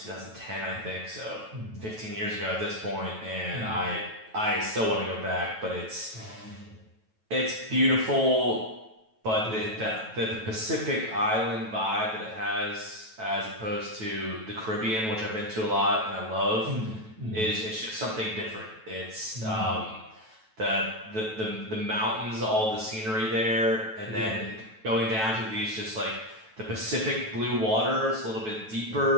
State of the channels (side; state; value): left; late; 9.2 ms